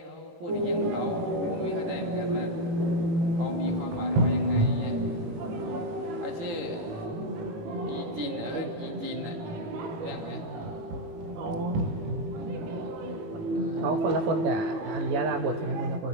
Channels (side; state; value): left; late; 18 ms